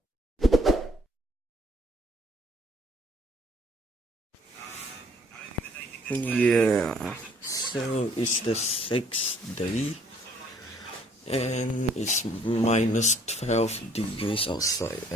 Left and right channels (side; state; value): both; normal; correlation 0.61